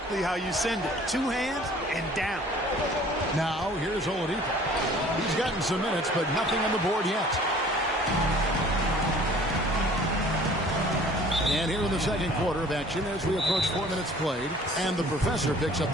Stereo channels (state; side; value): normal; both; correlation 0.51